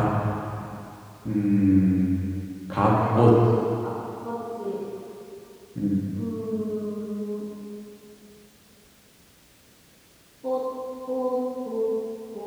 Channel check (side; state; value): both; identical; correlation 1.00